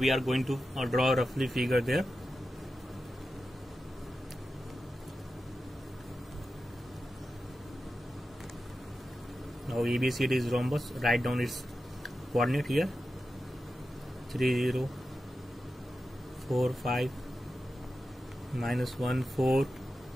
are going to draw a roughly figure there. Now ABCD is rhombus. Write down its coordinate here: 3, 0, 4, 5, minus 1, 4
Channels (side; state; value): both; normal; correlation 0.91